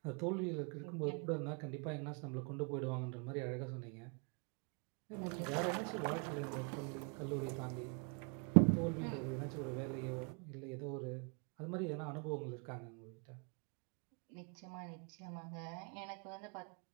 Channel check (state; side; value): quieter; left; 37.6 dB